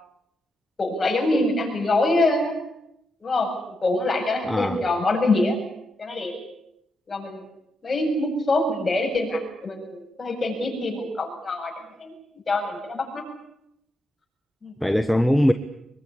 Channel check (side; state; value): both; normal; correlation 0.84